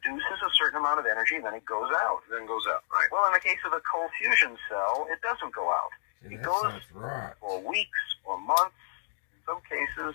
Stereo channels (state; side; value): silent; right; digital silence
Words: a certain amount of energy, and then it goes out. Right. Well, in the case of a cold fusion cell, it doesn't go out. See, It that goes sounds right. for weeks or months, in some cases,